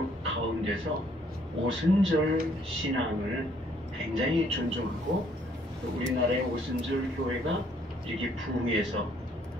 가운데서 오순절 신앙을 굉장히 존중하고, 우리나라의 오순절 교회가 이렇게 부흥해서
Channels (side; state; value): both; normal; correlation 0.65